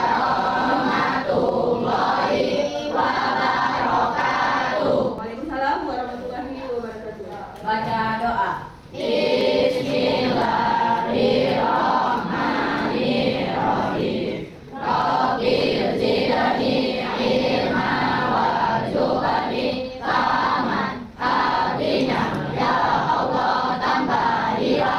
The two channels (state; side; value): identical; both; correlation 1.00